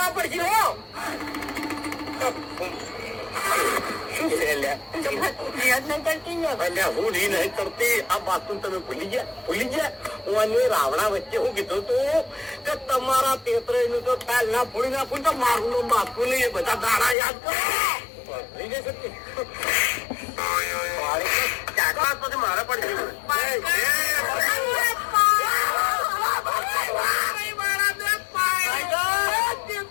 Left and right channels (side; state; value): right; drops out; at 17.2 s